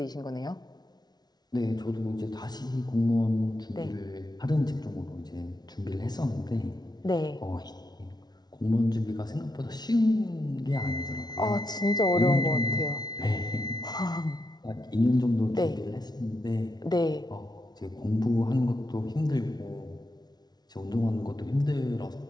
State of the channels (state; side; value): late; right; 0.19 ms